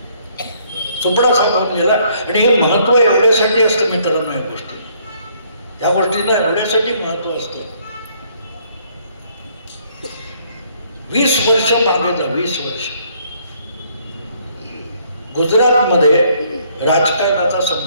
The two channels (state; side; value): inverted; both; correlation -0.65